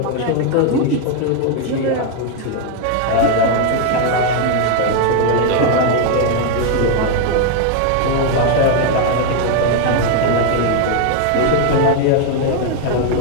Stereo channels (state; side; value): different; both; correlation 0.00